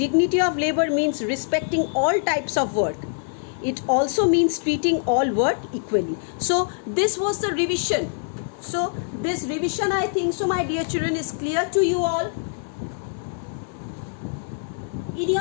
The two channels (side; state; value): right; silent; 63 dB below the other